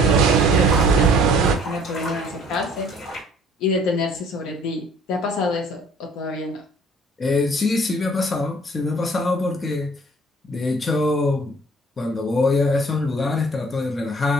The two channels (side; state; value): both; normal; correlation 0.54